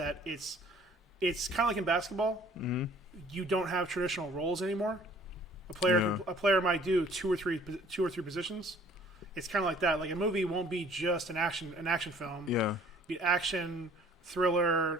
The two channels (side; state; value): both; normal; correlation 0.54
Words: it's kind of like in basketball. Mm-hmm. You don't have traditional roles anymore. A player might do two or three positions. It's kind of like that. Like a movie won't be just an action film. Yeah. Be action, thriller,